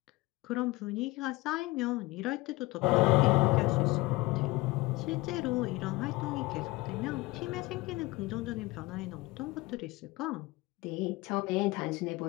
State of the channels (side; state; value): right; quieter; 21.1 dB